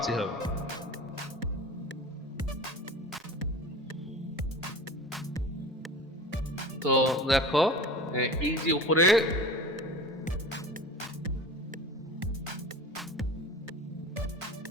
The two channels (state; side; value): normal; both; correlation 0.36